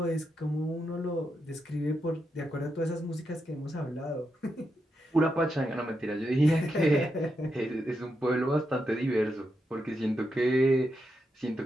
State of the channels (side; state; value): both; normal; correlation 0.84